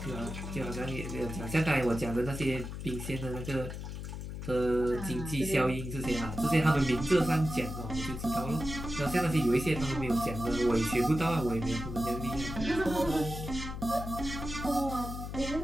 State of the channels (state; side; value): noise; left; hum, 7 dB below the sound